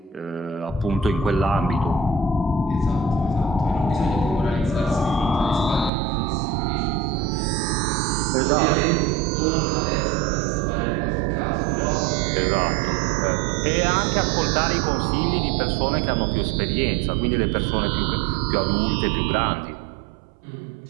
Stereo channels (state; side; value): drops out; left; at 5.9 s